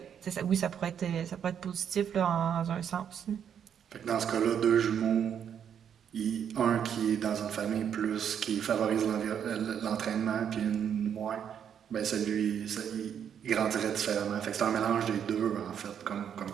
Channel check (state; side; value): quieter; left; 8.5 dB